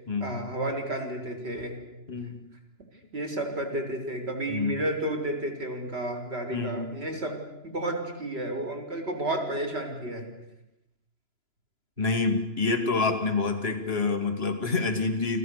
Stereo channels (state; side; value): late; left; 3.0 ms